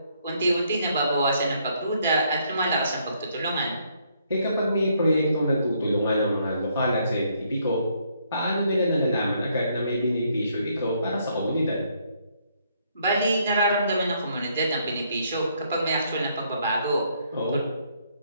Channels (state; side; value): inverted; both; correlation -0.70